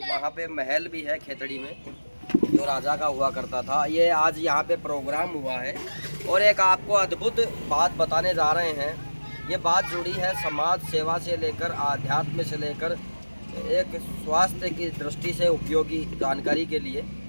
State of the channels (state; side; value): inverted; both; correlation -1.00